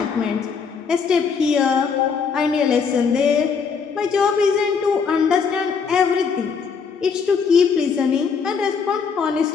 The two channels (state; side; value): quieter; right; 5.9 dB